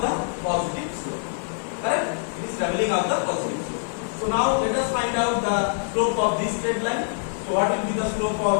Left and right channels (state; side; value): silent; right; digital silence